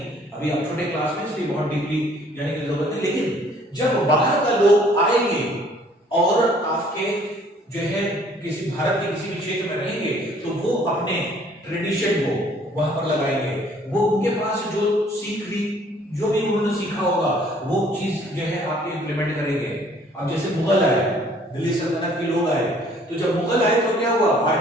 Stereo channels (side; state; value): both; normal; correlation 0.58